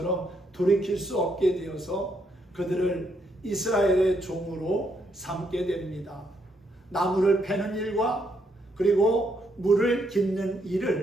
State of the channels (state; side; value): normal; both; correlation 0.75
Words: 돌이킬 수 없게 되어서 그들을 이스라엘의 종으로 삼게 됩니다. 나무를 패는 일과 그리고 물을 깃는